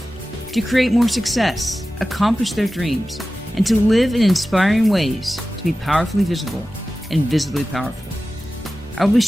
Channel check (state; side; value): normal; both; correlation 0.95